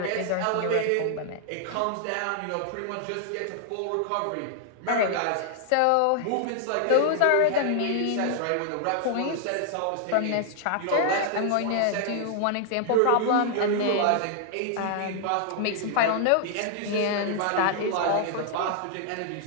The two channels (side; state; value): both; different; correlation -0.01